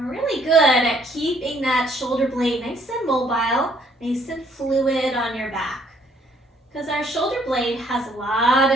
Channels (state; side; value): normal; both; correlation 0.65